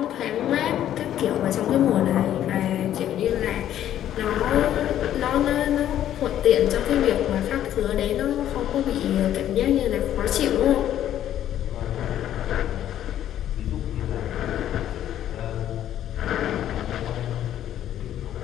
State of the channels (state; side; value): quieter; right; 11.5 dB